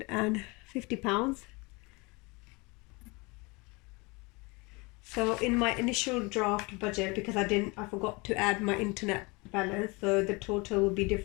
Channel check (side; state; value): right; quieter; 26.8 dB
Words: So in my initial draft budget, because I forgot to add my internet balance, so the total will be